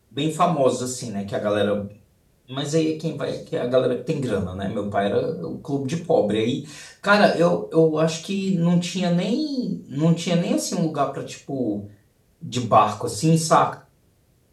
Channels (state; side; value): identical; both; correlation 1.00